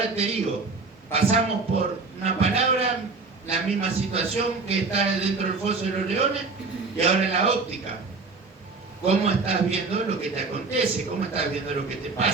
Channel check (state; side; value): quieter; left; 4.1 dB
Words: te digo, pasamos por una palabra, la misma situación que está dentro del foso de los leones, y ahora en la óptica. ¿Cómo estás viendo lo que te acontece? ¿Cómo estás viendo lo que te